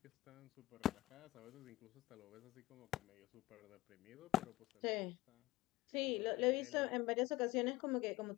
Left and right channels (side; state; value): right; quieter; 17.9 dB